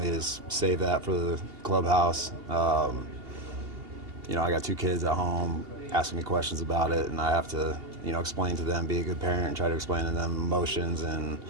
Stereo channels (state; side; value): late; left; 2.8 ms